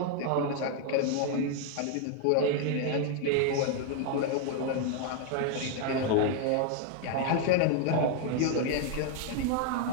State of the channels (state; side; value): different; both; correlation 0.00